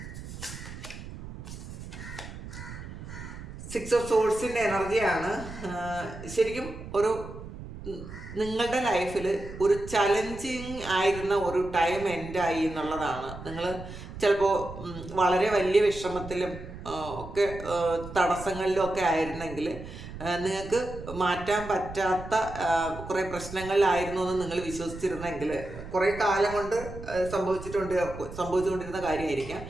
സിക്സ് ഓഫ് സോഴ്സിൻ്റെ എനർജിയാണ്. ശരിക്കും നിങ്ങളുടെ ലൈഫിൽ ഒരു ചലഞ്ചിങ് ആയിരുന്ന ഒരു ടൈം എൻഡായി എന്നുള്ളതാണ്. നിങ്ങൾ ചിലപ്പോൾ വളരെ വലിയ വിഷമത്തിലും ഒക്കെ തടസ്സങ്ങളിലും ഒക്കെ ആയിരുന്നെങ്കിൽ നിങ്ങൾക്ക് മാറ്റാൻ പറ്റാത്ത കുറേ പ്രശ്നങ്ങളിലായിരുന്നു എന്ന് നിങ്ങൾ വിശ്വസിച്ചിരുന്നെങ്കിൽ കുറേ കാലം കൊണ്ട് സംഭവിച്ചുകൊണ്ടിരുന്ന കാര്യമായിരിക്കാം.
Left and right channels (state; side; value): noise; right; rumble, 12 dB below the sound